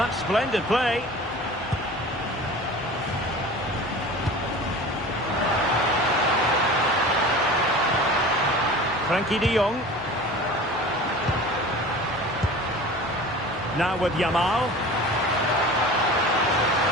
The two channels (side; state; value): both; normal; correlation 0.38